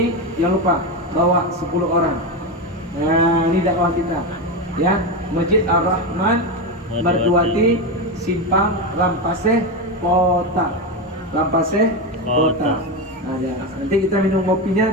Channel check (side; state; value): both; normal; correlation 0.15